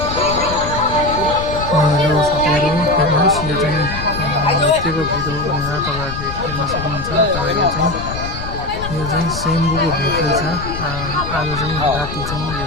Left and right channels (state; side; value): noise; left; rumble, 8 dB below the sound